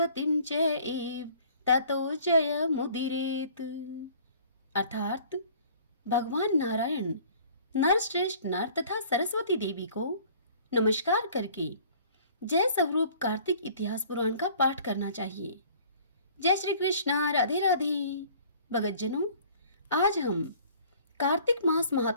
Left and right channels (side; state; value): both; inverted; correlation -0.52